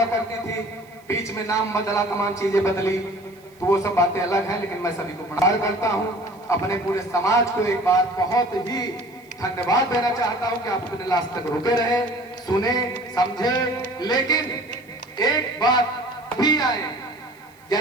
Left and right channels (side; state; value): right; noise; hiss, 30 dB below the sound